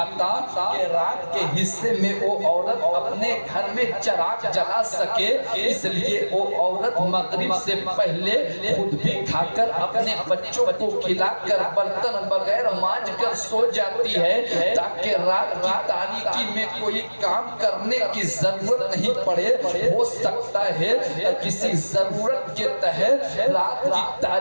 کہ رات کے حصے میں وہ عورت اپنے گھر میں چراغ جلا سکے، اس لیے وہ عورت مغرب سے پہلے خود بھی کھا کر اپنے بچوں کو کھلا کر برتن بغیر مانج کر سو جاتی ہے تاکہ رات کی تاریکی میں کوئی کام کرنے کی ضرورت نہیں پڑے۔ ہو سکتا ہے کسی ضرورت کے تحت رات کی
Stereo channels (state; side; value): inverted; both; correlation -1.00